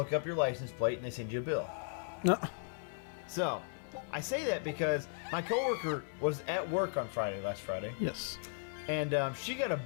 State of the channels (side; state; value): right; silent; digital silence